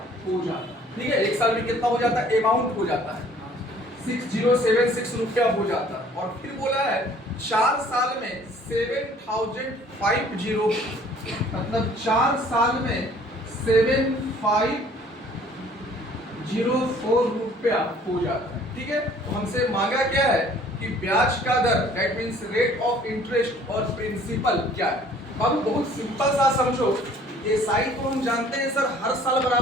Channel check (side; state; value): both; normal; correlation 0.55